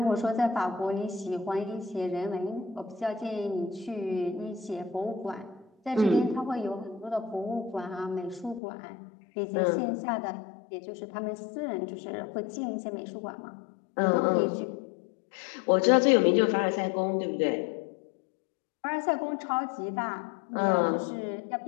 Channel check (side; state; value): right; drops out; at 8.6 s